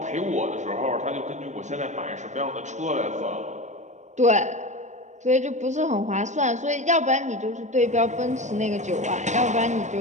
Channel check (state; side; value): late; left; 0.34 ms